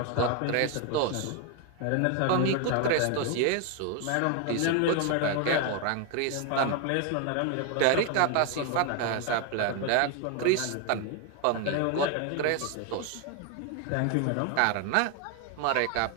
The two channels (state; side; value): different; both; correlation 0.01